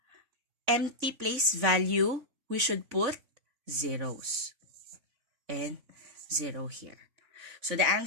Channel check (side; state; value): left; late; 3.5 ms